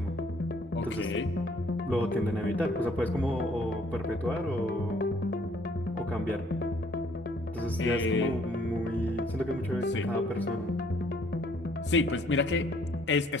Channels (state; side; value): normal; both; correlation 0.62